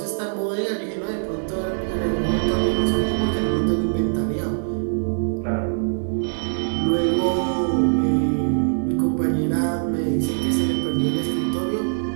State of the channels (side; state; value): left; silent; digital silence